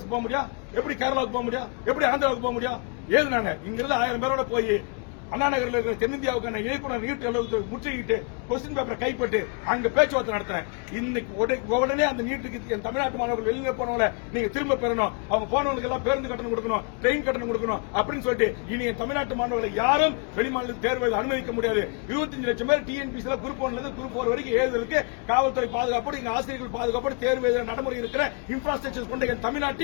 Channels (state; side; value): quieter; right; 35.8 dB